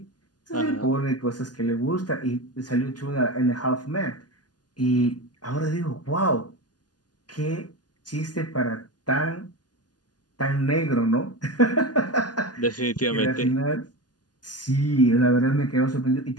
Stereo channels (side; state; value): right; late; 0.69 ms